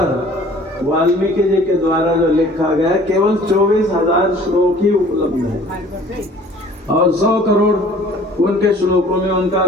वाल्मीकि जी के द्वारा जो लिखा गया केवल 24,000 श्लोक ही उपलब्ध है और 100 करोड़ उनके श्लोकों में उनका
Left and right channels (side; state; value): both; normal; correlation 0.51